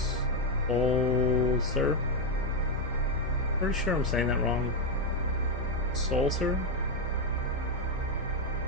Solser. Pretty sure I'm saying that wrong. Solser.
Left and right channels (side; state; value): both; normal; correlation 0.04